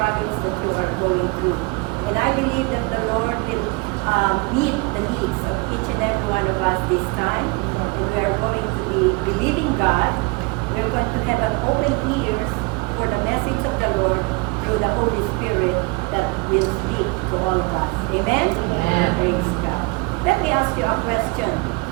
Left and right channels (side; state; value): left; quieter; 27.3 dB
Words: that you are going through. And I believe that the Lord will meet the needs of each and every one of us this time. And we are going to be believing God. We're going to have an open ears for the message of the Lord through the Holy Spirit that will speak to all of us. Amen? Amen. Praise God. Let me ask you a question.